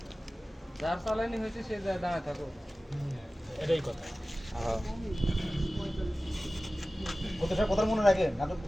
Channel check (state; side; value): normal; both; correlation 0.96